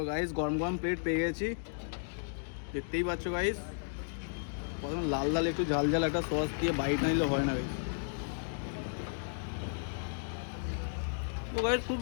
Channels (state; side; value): silent; right; digital silence